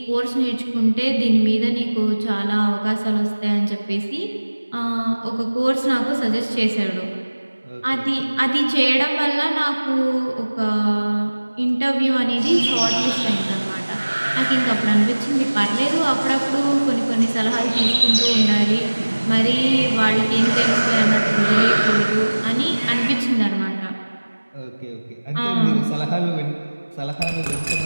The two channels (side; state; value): both; inverted; correlation -1.00